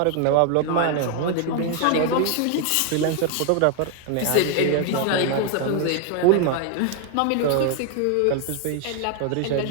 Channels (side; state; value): both; different; correlation 0.00